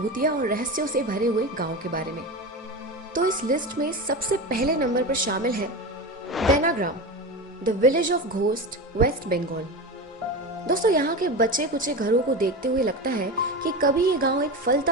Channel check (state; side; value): normal; both; correlation 0.23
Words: और रहस्यों से भरे हुए गांव के बारे में। तो इस लिस्ट में सबसे पहले नंबर पर शामिल है बेनाग्राम, the village of ghost, West Bengal. दोस्तों, यहाँ के बचे कुचे घरों को देखते हुए लगता है कि कभी ये गांव एक